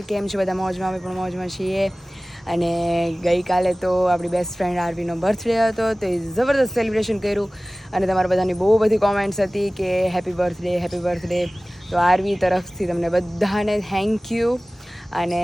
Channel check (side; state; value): both; normal; correlation 0.98